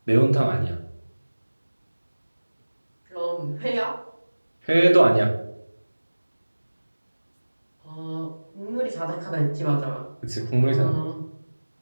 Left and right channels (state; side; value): inverted; both; correlation -1.00